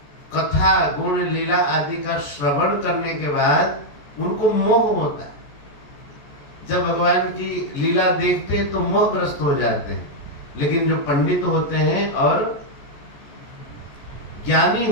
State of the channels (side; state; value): right; late; 14 ms